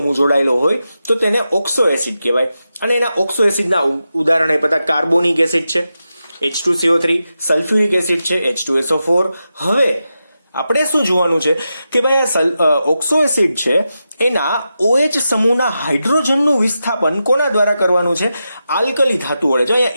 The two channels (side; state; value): both; inverted; correlation -0.89